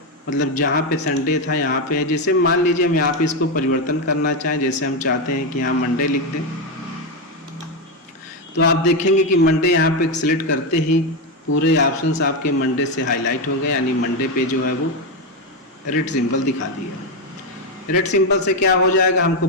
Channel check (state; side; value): normal; both; correlation 0.08